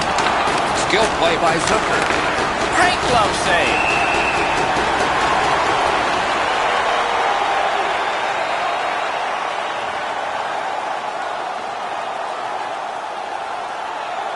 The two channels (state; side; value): identical; both; correlation 1.00